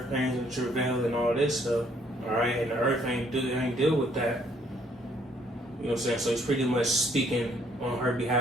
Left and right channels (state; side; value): normal; both; correlation 0.66